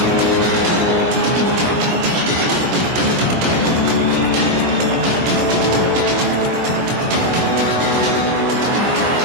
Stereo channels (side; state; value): left; late; 16 ms